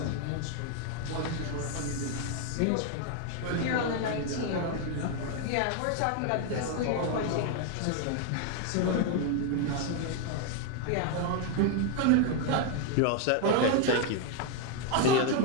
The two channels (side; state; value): both; different; correlation 0.01